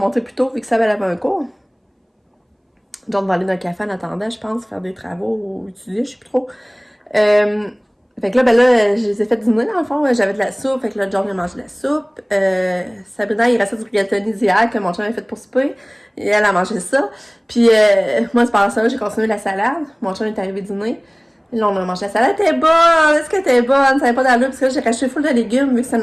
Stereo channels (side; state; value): both; identical; correlation 1.00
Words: plus tôt, vu que ça avait un cours. John va aller dans un café en attendant, je pense, faire des travaux ou étudier, je sais plus trop. Fait que là, ben là, je les ai fait dîner, dans le fond. J'avais de la soupe, fait que là, John a mangé de la soupe. Sabrina, il restait du rigatoni d'hier que mon chum avait fait pour souper. Et elle a mangé ça. Puis moi, c'est par ça, j'ai continué la salade. Mon chum est arrivé dîner. Et là, on a mangé la salade. Elle était bonne! Est-ce qu'elle était bonne? Ça n'avait pas d'allure, parce que là, j'ai racheté full de légumes, vu que c'est